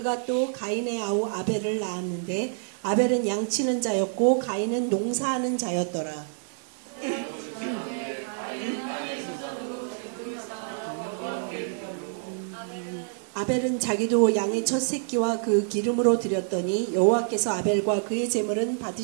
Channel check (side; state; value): left; silent; digital silence